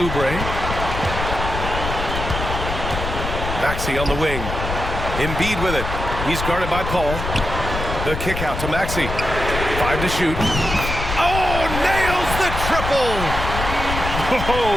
Maxey on the wing. Embiid with it. He's guarded by Paul. The kick out to Maxey. 5 to shoot. Oh, nails the triple!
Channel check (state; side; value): noise; left; rumble, 5 dB below the sound